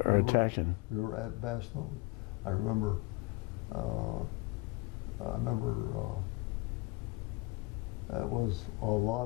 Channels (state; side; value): quieter; right; 22.1 dB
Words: attacking. We were at Bastogne. I remember it was a